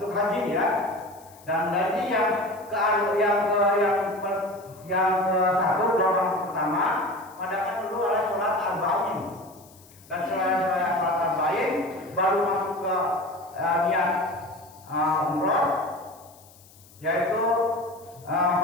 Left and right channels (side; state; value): left; noise; hiss, 25 dB below the sound